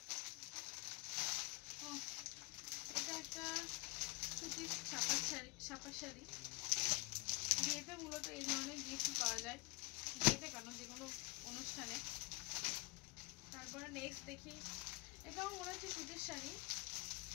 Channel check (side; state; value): right; quieter; 27.4 dB